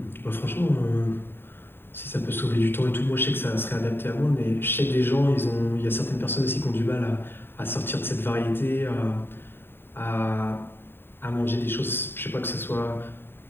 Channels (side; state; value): right; late; 0.11 ms